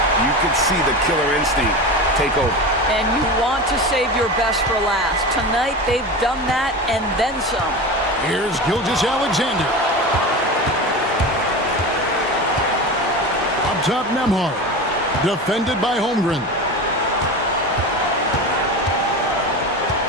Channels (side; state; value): both; normal; correlation 0.27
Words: you could see the killer instinct take over. And you want to save your best for last. Tonight, they've done that and then some. Here's Gilgeous-Alexander. Up top, Nembhard. Defended by Holmgren.